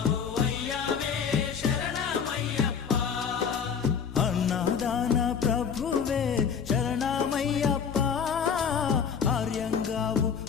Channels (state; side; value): quieter; right; 6.9 dB